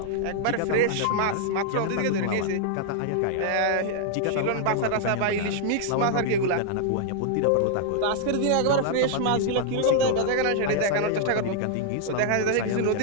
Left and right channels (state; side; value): different; both; correlation -0.01